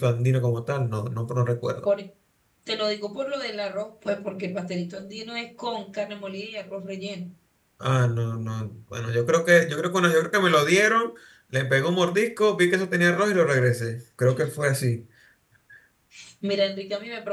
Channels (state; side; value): identical; both; correlation 1.00